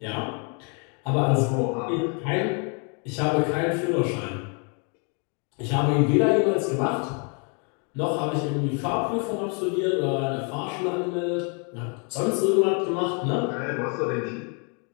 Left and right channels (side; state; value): right; quieter; 37.6 dB